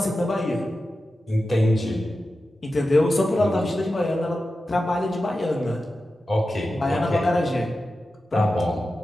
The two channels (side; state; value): both; normal; correlation 0.92